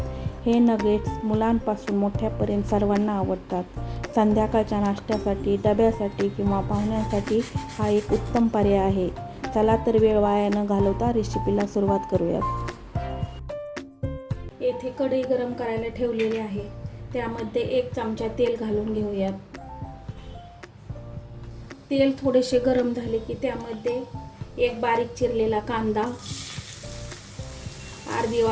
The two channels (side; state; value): both; identical; correlation 1.00